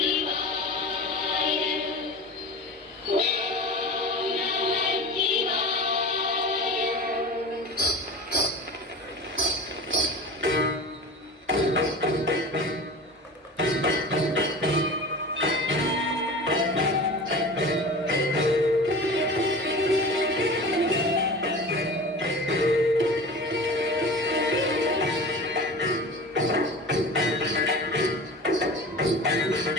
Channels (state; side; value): normal; both; correlation 0.34